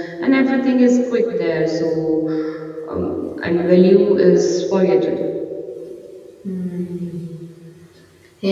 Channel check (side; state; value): both; identical; correlation 1.00